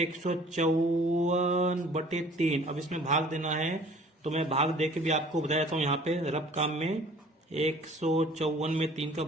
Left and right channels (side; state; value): both; normal; correlation 0.51